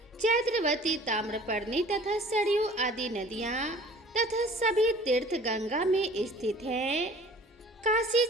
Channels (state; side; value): normal; both; correlation 0.48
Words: चैत्रवती, ताम्रपर्णी तथा सरयू आदि नदियाँ तथा सभी तीर्थ गंगा में स्थित हैं। काशी